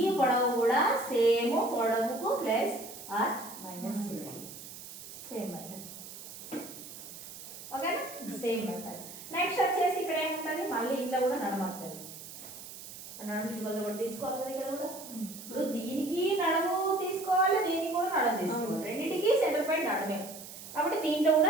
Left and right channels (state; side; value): noise; right; hiss, 13 dB below the sound